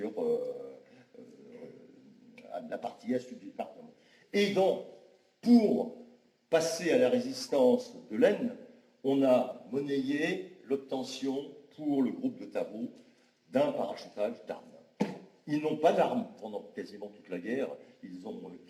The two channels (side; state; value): both; identical; correlation 1.00